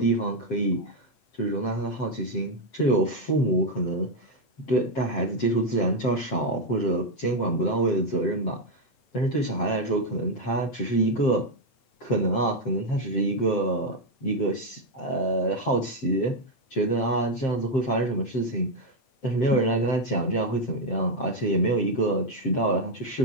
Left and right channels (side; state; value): right; late; 7.6 ms